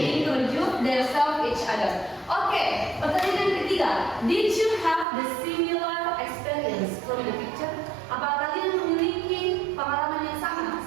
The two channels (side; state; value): left; drops out; at 5.1 s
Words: introduce themselves each other. Oke, pertanyaan ketiga. Did you have the similar experience from the picture? Apakah kalian memiliki pengalaman yang sama